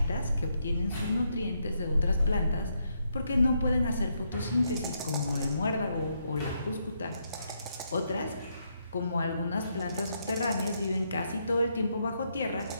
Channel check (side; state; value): both; inverted; correlation -0.78